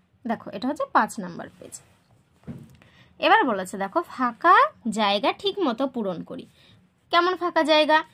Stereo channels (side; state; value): both; identical; correlation 1.00